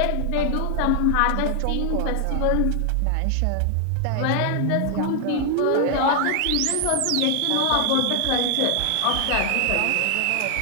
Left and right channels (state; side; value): different; both; correlation 0.00